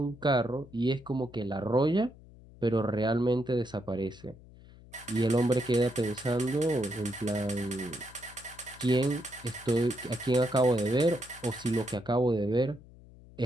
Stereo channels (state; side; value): noise; left; hum, 21 dB below the sound